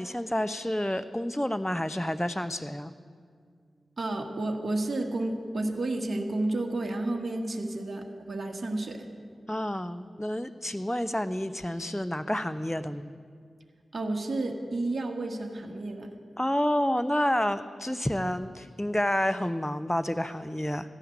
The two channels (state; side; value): normal; both; correlation 0.96